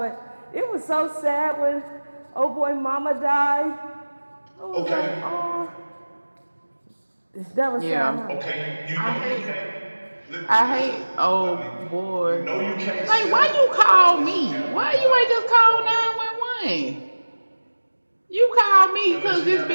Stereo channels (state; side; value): inverted; both; correlation -1.00